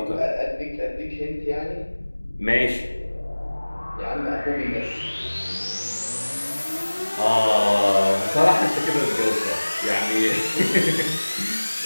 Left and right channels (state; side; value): inverted; both; correlation -1.00